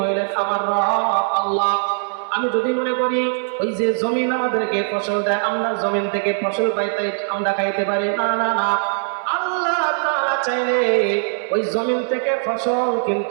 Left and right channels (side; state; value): left; silent; 64 dB below the other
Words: আমার রব আল্লাহ। আমি যদি মনে করি ওই যে জমিন আমাদেরকে ফসল দেয়, আমরা জমিন থেকে ফসল পাইতে আমরা খাইতে পারি, না না না, আল্লাহ তাআলা চাইলে ওই জমিন থেকে ফসল